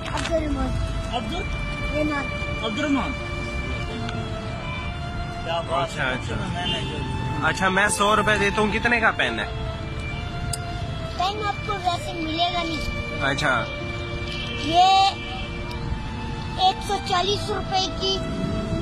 अब्दुल अब्दुलरहमान। क्या बात अच्छा है। अच्छा अच्छा, मैं 100 रुपए देता हूँ, कितने का पेन है? पेन आपको वैसे मिलेगा नहीं। अच्छा, ये 140 रुपए की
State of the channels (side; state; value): both; identical; correlation 1.00